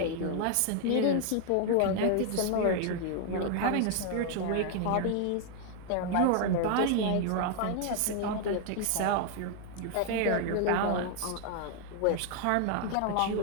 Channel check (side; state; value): both; different; correlation 0.00